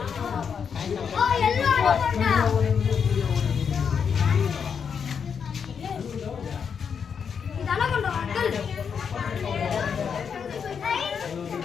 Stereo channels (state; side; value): quieter; right; 6.8 dB